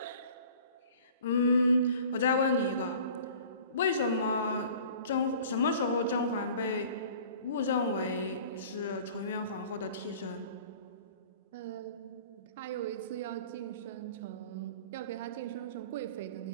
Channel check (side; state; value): both; inverted; correlation -0.46